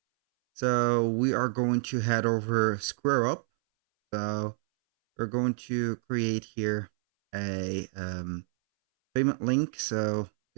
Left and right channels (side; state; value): left; silent; 59 dB below the other